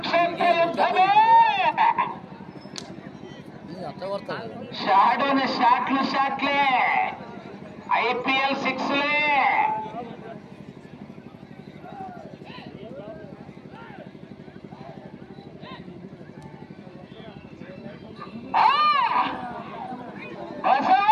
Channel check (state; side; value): identical; both; correlation 1.00